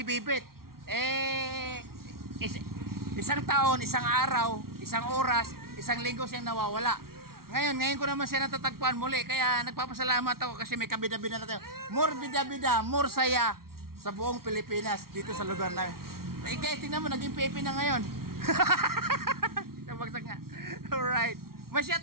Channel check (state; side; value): late; left; 0.93 ms